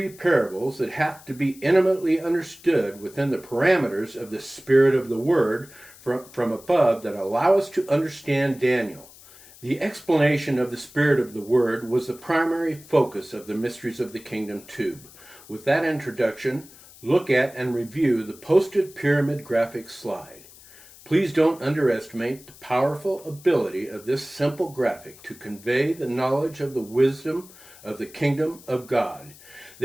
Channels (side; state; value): left; noise; hiss, 22 dB below the sound